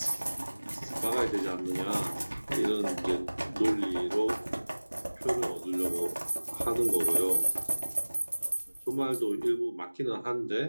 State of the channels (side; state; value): both; inverted; correlation -1.00